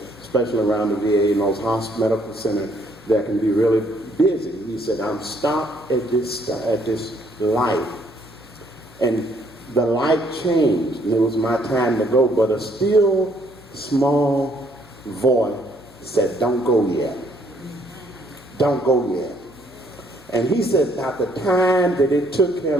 especially around the VA and those medical centers that can be really busy. He said, I'm stopped at this light. And the light changed, and it was my time to go, but a still small voice said, don't go yet. Don't go yet. And he said about the time that it took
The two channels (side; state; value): left; noise; hum, 27 dB below the sound